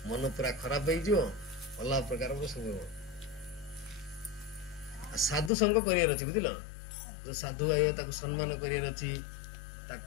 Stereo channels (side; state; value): right; drops out; at 5.5 s